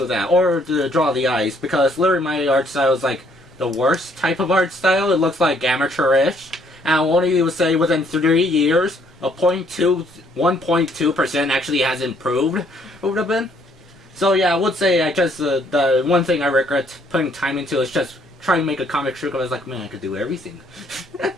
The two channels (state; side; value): normal; both; correlation 0.66